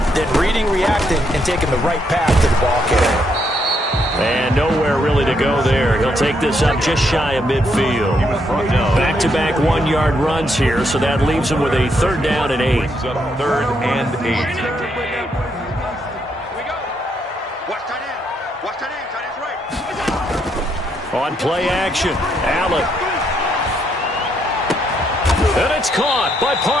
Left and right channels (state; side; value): normal; both; correlation 0.75